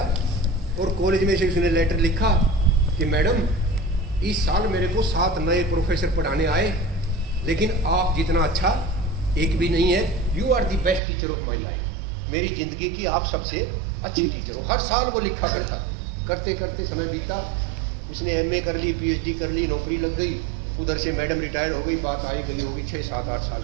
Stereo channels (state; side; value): drops out; left; at 11.0 s